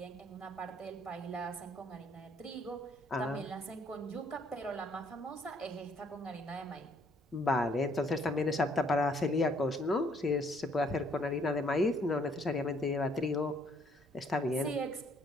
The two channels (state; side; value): normal; both; correlation 0.65